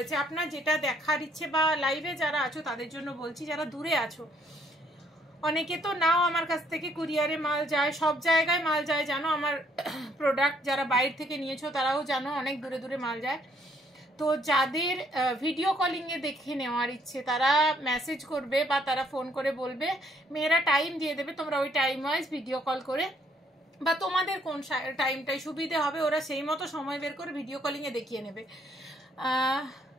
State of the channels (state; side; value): normal; both; correlation 0.67